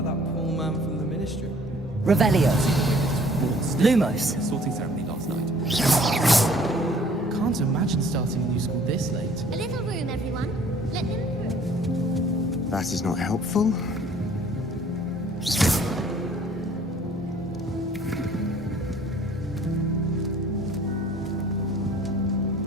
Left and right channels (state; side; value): normal; both; correlation 0.55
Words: that poor man from the Ministry. Revelio. Lumos. Sorting ceremony last night. Can't imagine starting a new school this late. A little room, everyone. Let them through. That is not helpful.